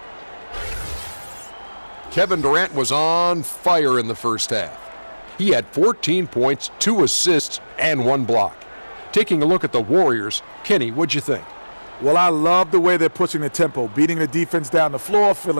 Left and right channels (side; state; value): both; inverted; correlation -1.00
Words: Kevin Durant was on fire in the first half. He had 14 points, 2 assists, and 1 block. Taking a look at the Warriors, Kenny, what'd you think? Well, I love the way they're pushing the tempo, beating the defense down the floor,